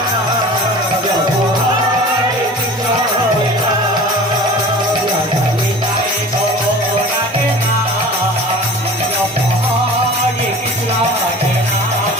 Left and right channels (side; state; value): both; normal; correlation 0.40